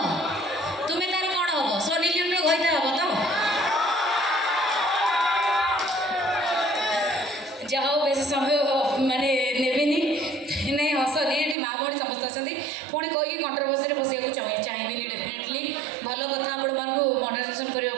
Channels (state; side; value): drops out; left; at 11.6 s